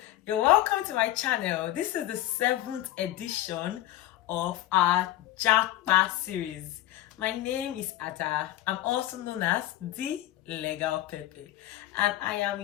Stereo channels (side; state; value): right; quieter; 14.8 dB